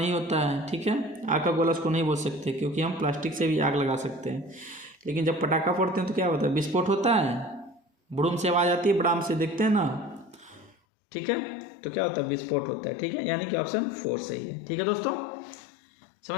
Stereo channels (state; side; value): drops out; right; at 10.8 s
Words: होता है, ठीक है। आग का गोला उसको नहीं बोल सकते, क्योंकि हम प्लास्टिक से भी आग लगा सकते हैं। लेकिन जब पटाखा फोड़ते हैं तो क्या होता है, विस्फोट होता है, बुड़ुम से आवाज़ आती है, बड़ाम से, देखते हैं ना, ठीक है। तो क्या होता है, विस्फोट होता है, ठीक है। यानी कि ऑप्शन 4 सही है। ठीक है दोस्तों,